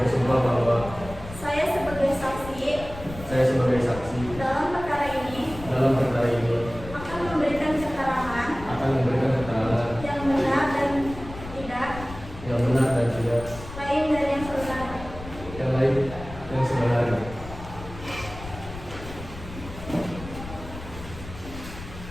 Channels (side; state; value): left; noise; rumble, 13 dB below the sound